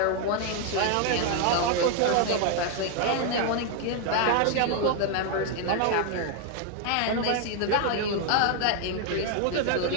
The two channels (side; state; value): both; different; correlation 0.00